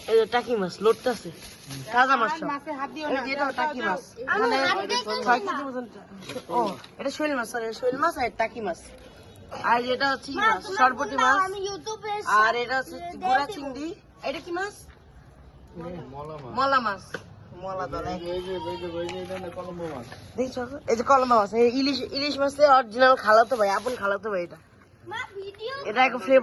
এই যে টাকি মাছ লোডটা আছে, তাজা মাছ সব। এটা টাকি মাছ, মানে 6 কেজির মতন। ও এটা শৈল মাছ, সরি শৈল মাছ আর টাকি মাছ। আর এটা হচ্ছে মাছ সরবটি মাছ, আর এটা হচ্ছে গুড়া চিংড়ি। এটা কি মাছ? মলা মাছ, মলা দলে দেখছো, এই যে কলম্বা মাছ, ইলিশ মাছের অরিজিনাল খালাতো ভাই, আপন খালাতো ভাই। এটা একটা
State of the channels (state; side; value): identical; both; correlation 1.00